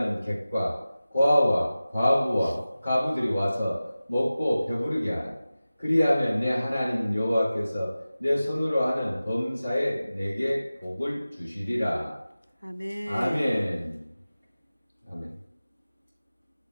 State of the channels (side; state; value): both; inverted; correlation -0.96